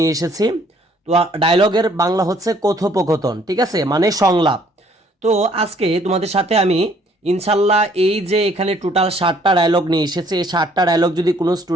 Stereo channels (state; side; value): normal; both; correlation 0.62